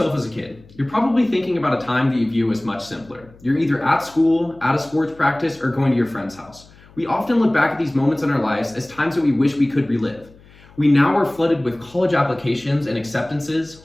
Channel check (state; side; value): noise; left; hum, 25 dB below the sound